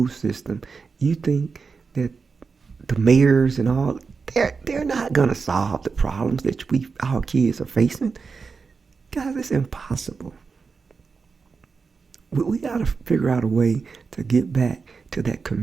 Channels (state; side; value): quieter; left; 4.9 dB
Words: system, you think that the mayors and all, they're not going to solve the problems that our kids are facing. Guys, it's impossible. We got to figure out a way to get back to that